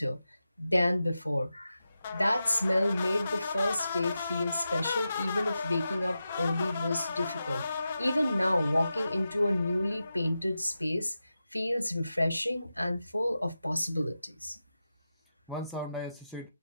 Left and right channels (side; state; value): both; inverted; correlation -0.91